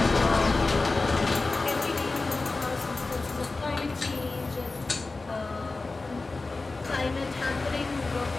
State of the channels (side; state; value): right; quieter; 3.5 dB